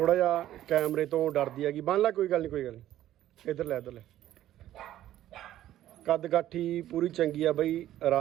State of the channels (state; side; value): quieter; left; 13.1 dB